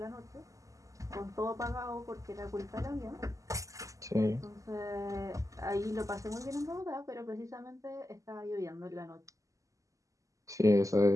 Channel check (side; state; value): left; late; 0.16 ms